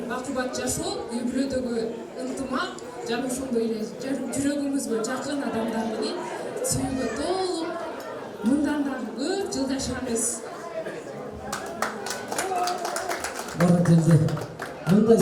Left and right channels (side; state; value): both; identical; correlation 1.00